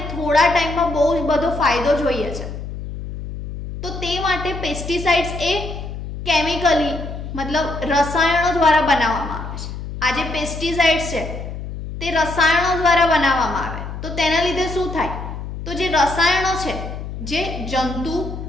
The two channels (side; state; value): left; noise; hum, 8 dB below the sound